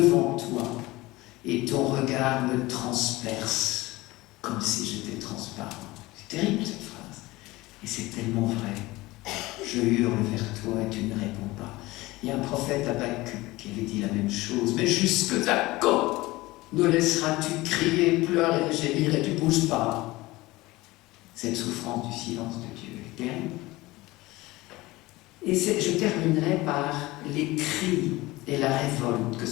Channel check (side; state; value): right; quieter; 19.9 dB